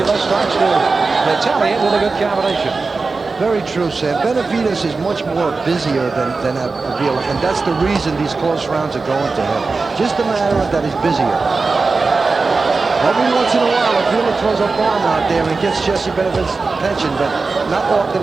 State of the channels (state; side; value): quieter; left; 4.1 dB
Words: starts to retaliate with a good combination. Very true, Sam. Benavides is much more busier than Abila, and that's the reason these close rounds are going to him. Just a matter of that he's busier. Every once in a while, Abila throws a bomb out there and gets Jesse Benavides' attention, but not